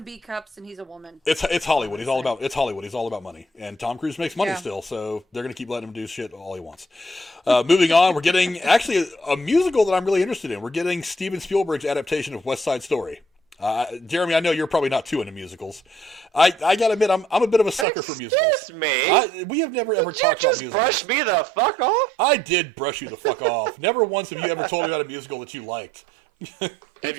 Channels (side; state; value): left; drops out; at 17.9 s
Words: B cups, and he's a woman. It's Hollywood. He's all about money, and Tom Cruise makes money still, so they're gonna keep letting him do shit all he wants. Moving on, we're getting actually a musical that I'm really interested in. We're getting Steven Spielberg's adaptation of West Side Story. Jeremy, I know you're probably not too into musicals. I gotta admit, I'm a bit of a sucker for musicals. Excuse me? We have never ever talked about musicals. Brush me the fuck off? I did brush you the fuck off. Never once have you ever told me about a musical that you liked. Have